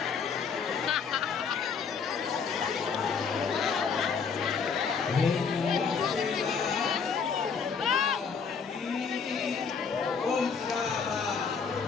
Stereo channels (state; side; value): quieter; right; 5.9 dB